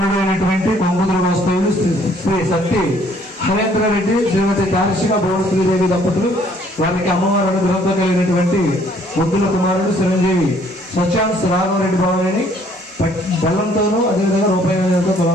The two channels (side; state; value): both; normal; correlation 0.62